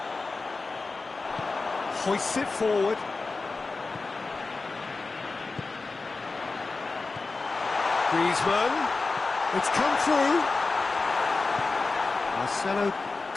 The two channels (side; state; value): right; quieter; 3.8 dB